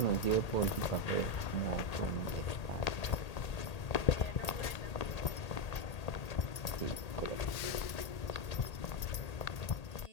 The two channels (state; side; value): late; right; 1.8 ms